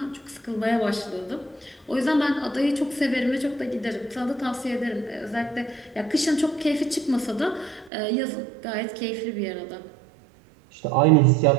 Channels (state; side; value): drops out; left; at 7.9 s